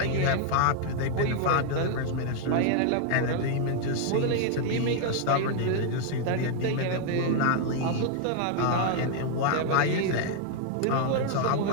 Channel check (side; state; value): both; different; correlation 0.00